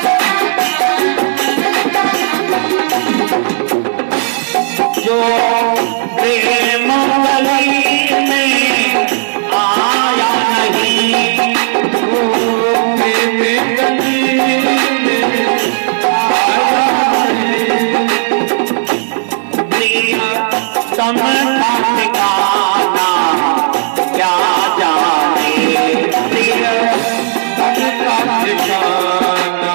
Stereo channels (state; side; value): silent; left; digital silence